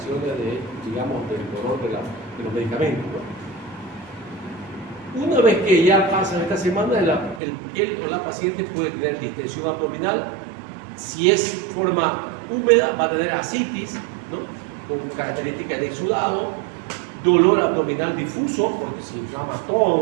de, digamos, del dolor de los medicamentos, ¿no? Una vez que ya pasan esta semana, él o la paciente puede tener distensión abdominal. Si es forma húmeda, va a tener ascitis, ¿no?, con características de exudado, dolor abdominal difuso, porque se inflama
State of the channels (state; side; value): drops out; left; at 7.4 s